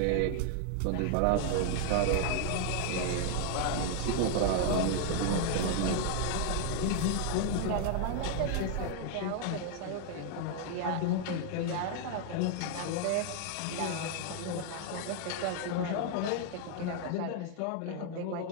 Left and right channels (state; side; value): different; both; correlation 0.00